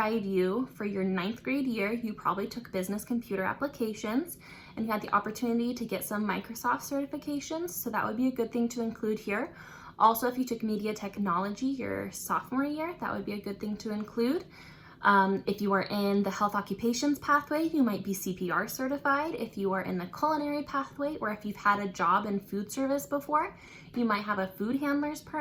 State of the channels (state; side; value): identical; both; correlation 1.00